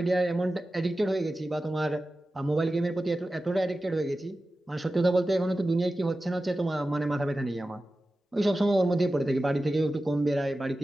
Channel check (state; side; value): normal; both; correlation 0.94